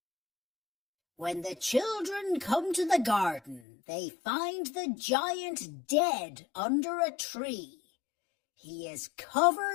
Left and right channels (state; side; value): drops out; right; at 3.6 s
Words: When the children come to the garden, they find the giant dead under a tree. He is